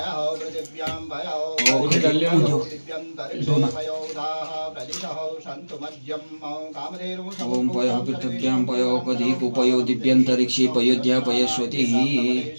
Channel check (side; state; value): both; inverted; correlation -1.00